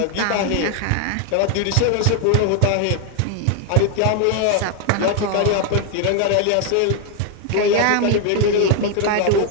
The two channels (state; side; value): different; both; correlation 0.01